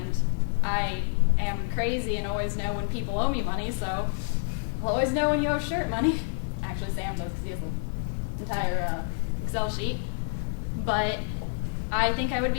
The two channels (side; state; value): right; silent; 59 dB below the other